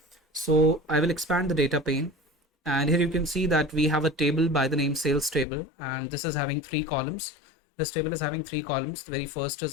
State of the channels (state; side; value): drops out; right; at 5.5 s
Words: So I will expand the data pane, and here you can see that we have a table by the name sales table, and this is having three columns. This table is having three columns. The very first